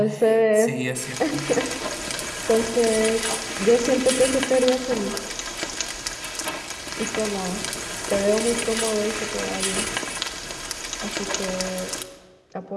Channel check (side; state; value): both; identical; correlation 1.00